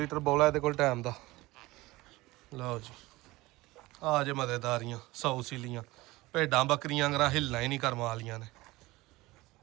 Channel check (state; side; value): quieter; left; 20.0 dB